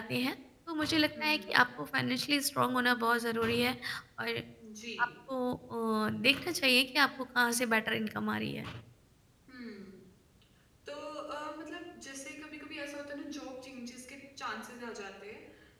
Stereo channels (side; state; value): both; identical; correlation 1.00